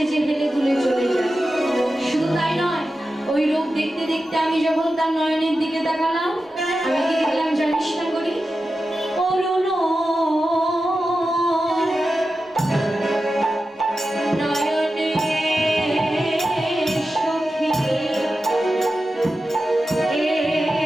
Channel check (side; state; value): both; normal; correlation 0.92